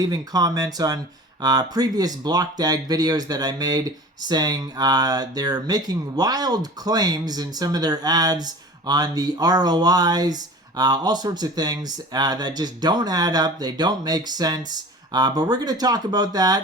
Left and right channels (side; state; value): both; normal; correlation 0.39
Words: comments on previous Blockdag videos that I made saying they're making wild claims in some of their ads on the ROIs, all sorts of things that just don't add up, they don't make sense. But we're going to talk about